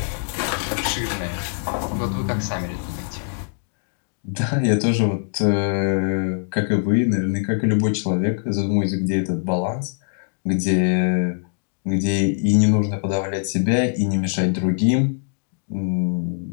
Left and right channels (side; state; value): right; silent; digital silence